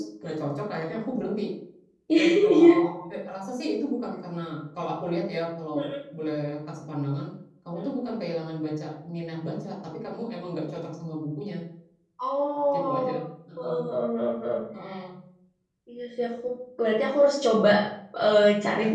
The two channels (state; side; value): identical; both; correlation 1.00